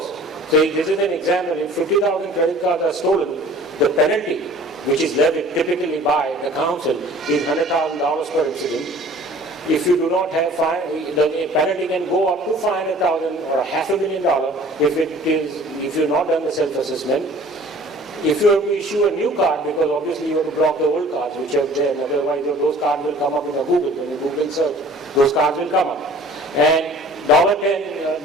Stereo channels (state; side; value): normal; both; correlation 0.48